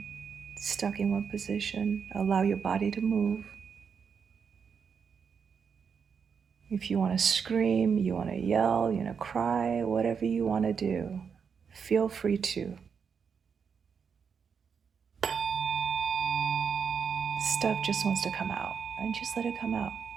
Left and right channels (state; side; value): quieter; left; 6.4 dB